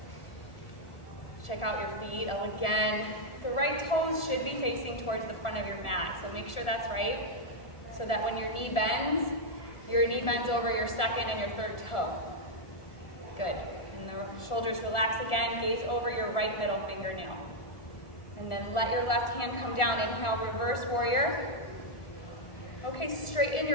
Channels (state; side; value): late; right; 1.4 ms